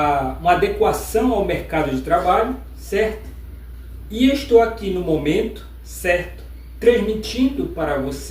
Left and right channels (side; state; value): both; identical; correlation 1.00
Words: adequação ao mercado de trabalho, certo? E estou aqui no momento, certo, transmitindo para